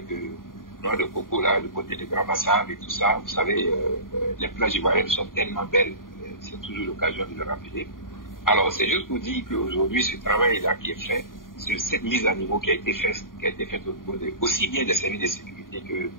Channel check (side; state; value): right; late; 0.90 ms